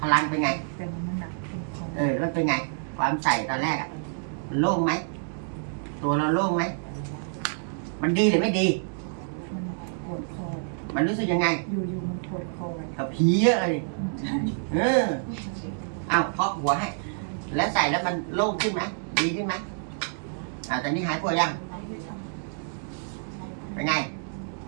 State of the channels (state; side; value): silent; left; digital silence